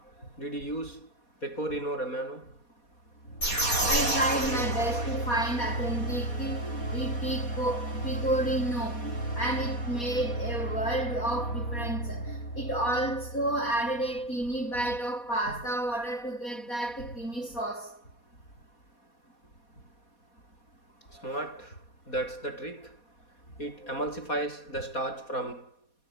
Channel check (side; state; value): right; late; 4.2 ms